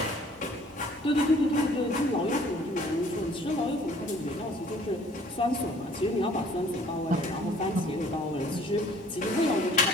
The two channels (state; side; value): normal; both; correlation 0.56